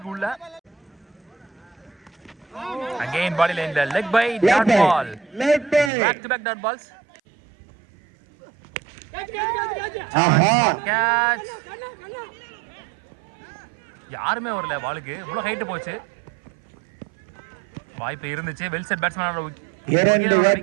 உள்ள. Again body line the leg by dot ball. Back to back dot balls. Catch. யாருமே வரல பாலுக்கு. இவ்வளவு ஹைட் போச்சு. வாய்ப்பு இருந்துச்சு. வெல் செட் பேட்ஸ்மேனோட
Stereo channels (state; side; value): drops out; left; at 5.9 s